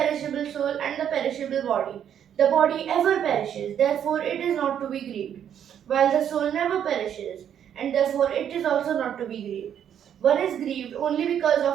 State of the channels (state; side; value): quieter; left; 9.3 dB